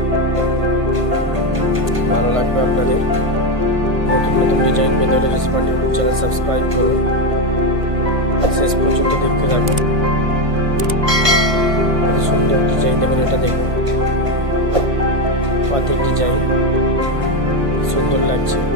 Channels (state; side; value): late; left; 1.5 ms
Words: ভালো লাগবে আপনাদের। নতুন নতুন ডিজাইন পেতে হলে জসি পান্ডে ইউটিউব চ্যানেল সাবস্ক্রাইব করুন, শেষ পর্যন্ত দেখতে থাকুন। কত সুন্দর ডিজাইন দেখুন। এটা দেখুন পাতের ডিজাইন, সুন্দর লাগছে।